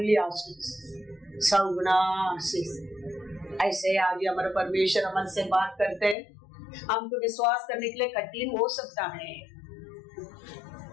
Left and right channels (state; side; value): drops out; right; at 6.2 s